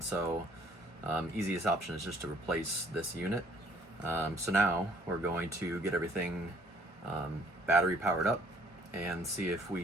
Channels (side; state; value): both; normal; correlation 0.60